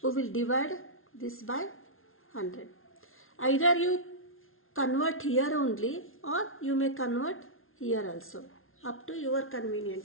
We will divide this by 100. Either you convert here only, or you may convert here also. Up to your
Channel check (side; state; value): right; late; 0.61 ms